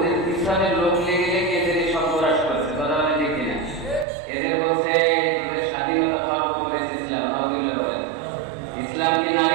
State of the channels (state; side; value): drops out; left; at 4.0 s